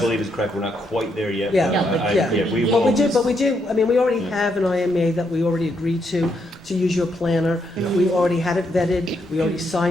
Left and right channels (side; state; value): both; normal; correlation 0.77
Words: believe is correct. We're not quite there yet. Yeah. but Yeah, but I- yeah. we But we will. do, I mean, we already Yeah. have an IMA that we already agreed to use your planner. We already had it vetted, we already